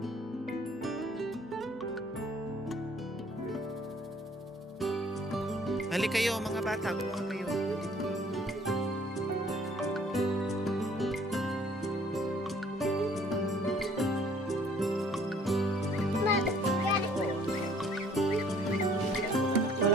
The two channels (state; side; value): normal; both; correlation 0.58